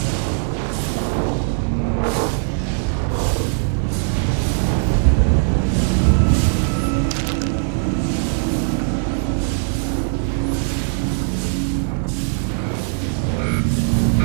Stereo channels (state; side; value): silent; left; 60 dB below the other